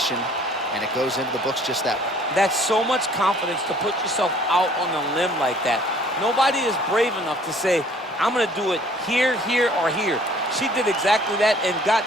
and it goes into the books just that way. That's so much confidence to put yourself out on a limb like that. Nobody is brave enough to say, I'm going to do it here, here, or here. She did exactly that and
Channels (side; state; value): both; normal; correlation 0.55